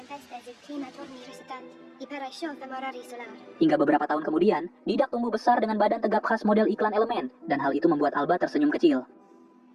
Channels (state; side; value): identical; both; correlation 1.00